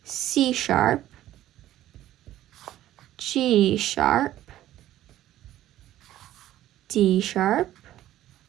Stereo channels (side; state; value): left; quieter; 13.7 dB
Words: C sharp, G sharp, D sharp,